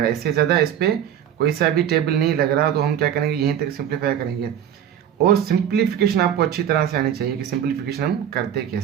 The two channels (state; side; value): quieter; left; 9.7 dB